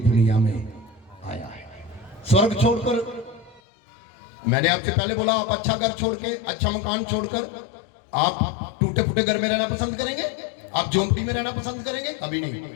में आया है। स्वर्ग छोड़कर, मैंने आपसे पहले बोला, आप अच्छा घर छोड़ के, अच्छा मकान छोड़कर आप टूटे फूटे घर में रहना पसंद करेंगे? आप झोंपड़ी में रहना पसंद करेंगे? कभी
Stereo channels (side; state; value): right; drops out; at 3.6 s